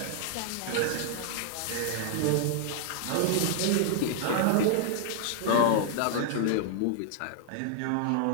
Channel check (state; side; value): different; both; correlation 0.00